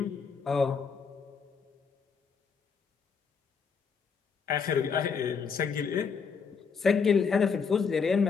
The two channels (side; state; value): right; quieter; 5.7 dB